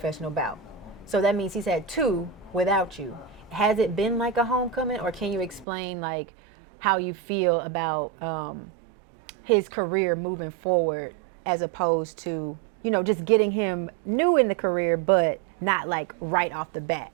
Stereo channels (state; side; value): drops out; left; at 5.7 s